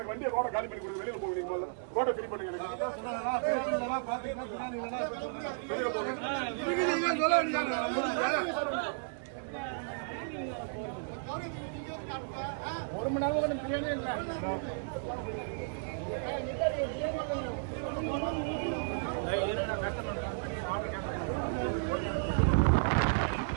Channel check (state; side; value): silent; left; 55 dB below the other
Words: வண்டியை ரோட காலி பண்ணி கொடுங்க. வெளியில போவீங்க. ரோட்டை ஃப்ரீ பண்ணுங்க. ஒரு மணி நேரம் பிரியாணி இல்லை.